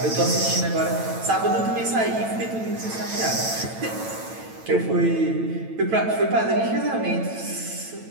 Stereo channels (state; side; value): late; left; 9.0 ms